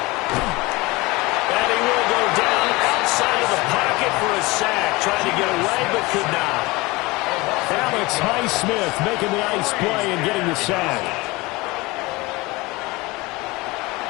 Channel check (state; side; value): quieter; right; 22.7 dB